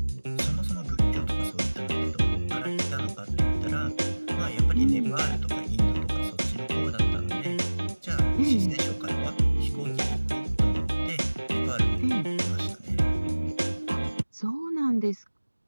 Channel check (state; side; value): inverted; both; correlation -1.00